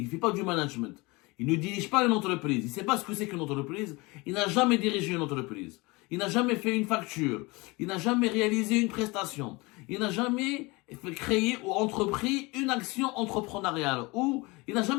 il fait pas du management. Il ne dirige pas une entreprise. Il ne sait pas ce que c'est qu'une entreprise. Il n'a jamais dirigé une entreprise. Il n'a jamais fait une facture. Il n'a jamais réalisé une prestation. Il n'a jamais créé ou entrepris une action entrepreneuriale. Ou il n'a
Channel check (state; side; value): quieter; right; 24.6 dB